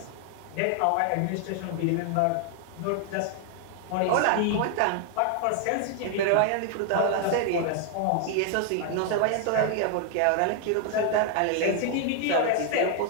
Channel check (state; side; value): different; both; correlation 0.00